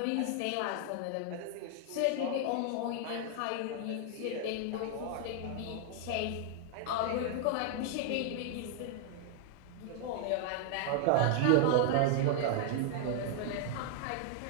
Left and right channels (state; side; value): different; both; correlation 0.00